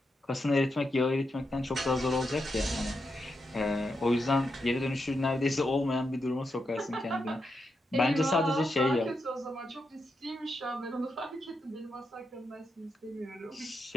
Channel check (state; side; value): normal; both; correlation 0.85